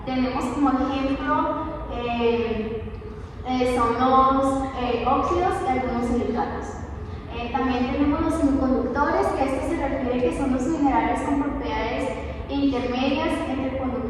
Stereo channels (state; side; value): identical; both; correlation 1.00